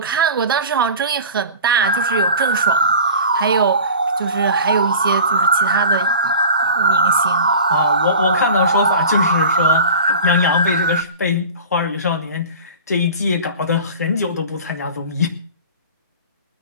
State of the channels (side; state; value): both; inverted; correlation -0.38